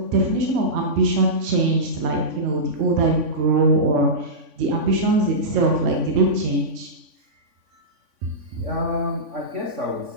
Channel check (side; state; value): left; late; 3.5 ms